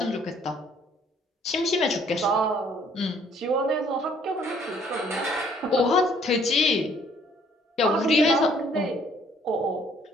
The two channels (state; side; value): normal; both; correlation 0.62